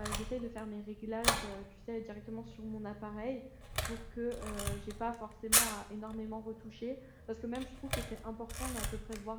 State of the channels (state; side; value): identical; both; correlation 1.00